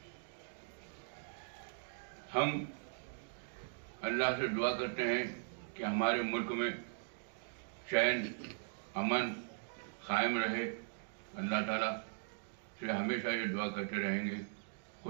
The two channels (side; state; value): left; silent; digital silence